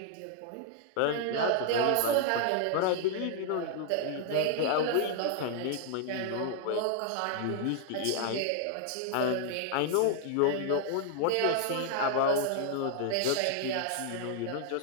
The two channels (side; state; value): both; different; correlation 0.00